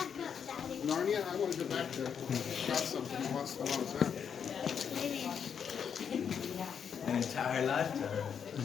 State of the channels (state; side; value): quieter; right; 7.4 dB